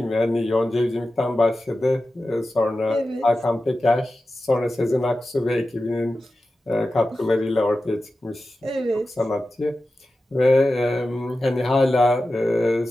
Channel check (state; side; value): normal; both; correlation 0.93